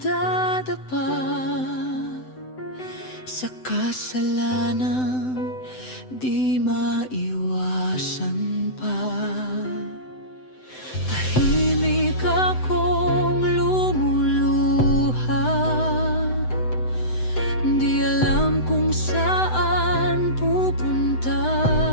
sa kasalanang di maiwasan pa. Tahimik akong lumuluha, di alam kung saan pupunta.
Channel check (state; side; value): late; right; 7.9 ms